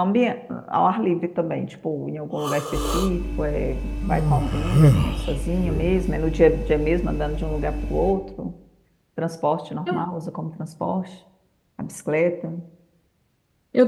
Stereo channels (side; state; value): both; identical; correlation 1.00